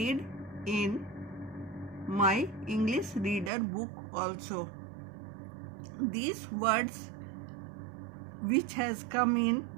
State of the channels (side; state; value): left; drops out; at 3.5 s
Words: in my English reader book also. These words which has come in